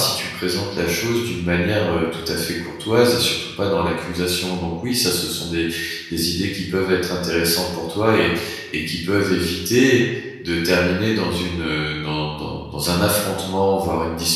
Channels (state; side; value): identical; both; correlation 1.00